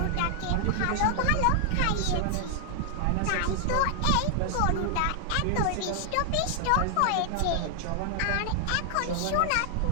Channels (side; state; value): both; different; correlation 0.00